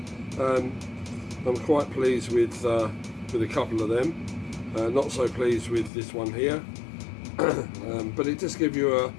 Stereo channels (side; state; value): right; drops out; at 5.9 s